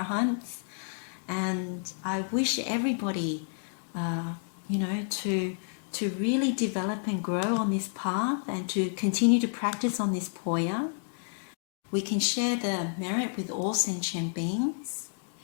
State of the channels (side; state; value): right; silent; digital silence